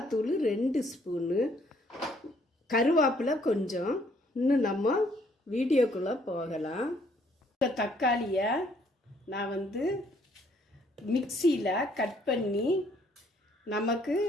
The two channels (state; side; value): normal; both; correlation 0.66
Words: 2 ஸ்பூனு, கருவேப்பிலை கொஞ்சம். இன்னும் நம்ம வீடியோக்குள்ளே போகலாம். இந்த தக்காளியை நான் மிக்சியில் கட் பண்ணி நமக்கு